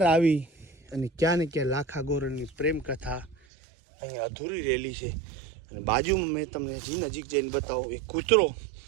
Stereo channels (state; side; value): drops out; left; at 3.4 s